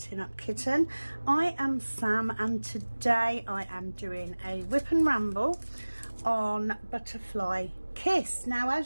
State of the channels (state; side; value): inverted; both; correlation -1.00